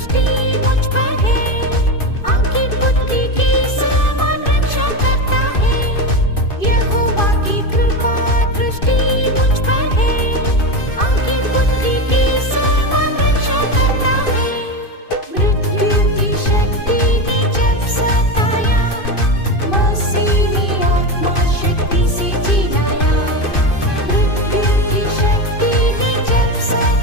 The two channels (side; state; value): right; late; 2.5 ms